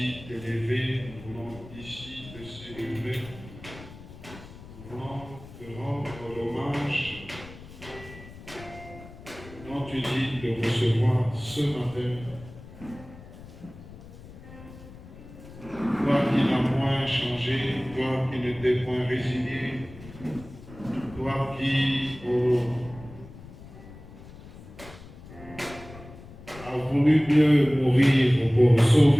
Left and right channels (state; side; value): noise; left; rumble, 17 dB below the sound